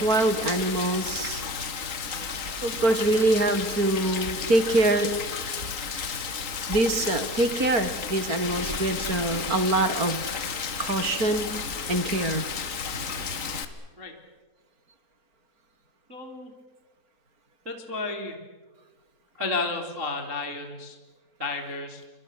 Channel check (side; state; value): left; late; 3.9 ms